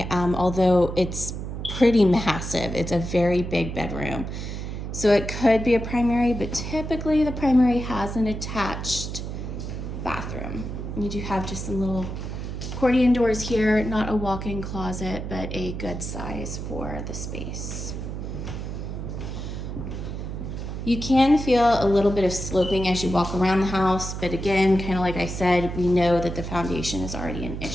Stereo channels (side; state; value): right; noise; hum, 6 dB below the sound